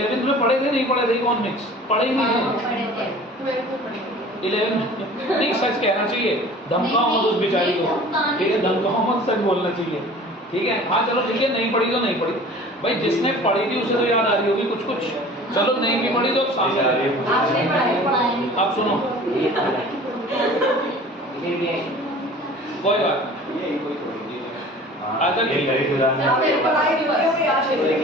में पढ़े थे नहीं पढ़े थे इकोनॉमिक्स? पढ़े ही नहीं थे 11 में। नहीं सच कहना चाहिए, धमकाओ मत उस बेचारी को, ठीक है? धमकाओ मत, सच बोलना चाहिए, ठीक है? हाँ चलो ठीक है, नहीं पढ़ी तो नहीं पढ़ी भाई, जिसने पढ़ी थी उसे तो याद आ रही होगी कुछ कुछ। चलो नहीं भी पढ़ी तो सामने आप सुनो, कोई बात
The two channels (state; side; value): normal; both; correlation 0.44